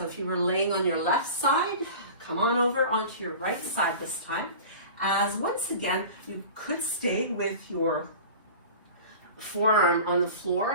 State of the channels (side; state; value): both; inverted; correlation -0.37